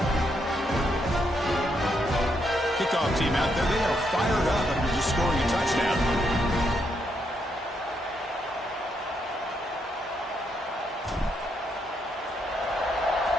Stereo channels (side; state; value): both; normal; correlation 0.78